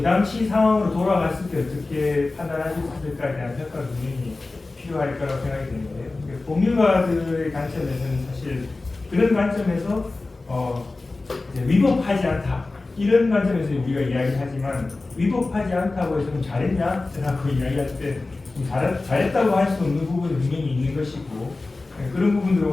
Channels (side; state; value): right; quieter; 3.4 dB